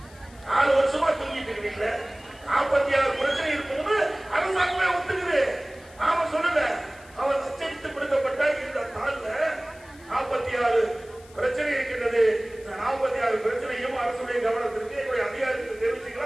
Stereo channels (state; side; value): noise; left; hiss, 25 dB below the sound